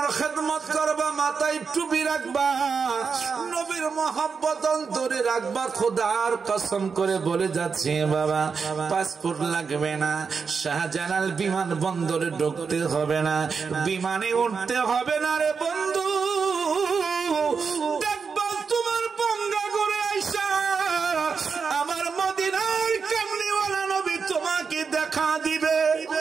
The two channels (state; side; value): quieter; left; 5.5 dB